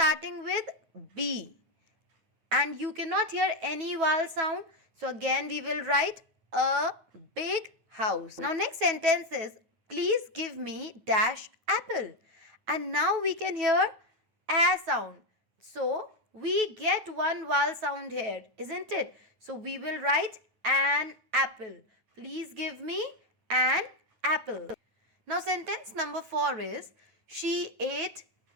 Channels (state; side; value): late; left; 9.2 ms